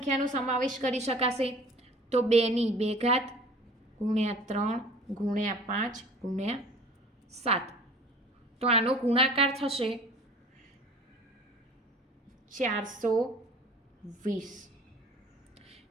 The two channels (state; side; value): normal; both; correlation 0.46